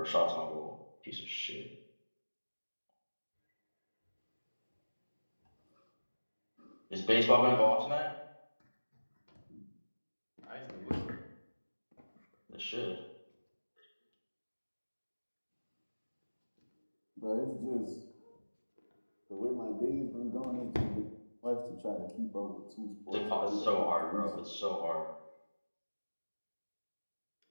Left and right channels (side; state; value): both; inverted; correlation -1.00